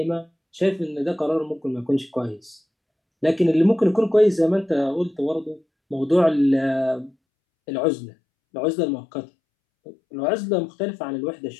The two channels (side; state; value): right; drops out; at 7.1 s